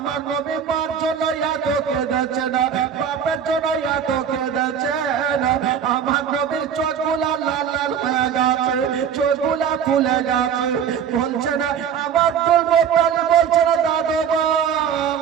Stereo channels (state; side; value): quieter; left; 7.9 dB